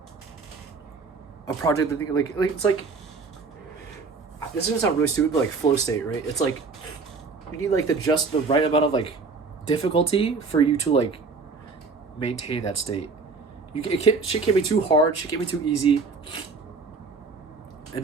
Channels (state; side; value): quieter; left; 4.4 dB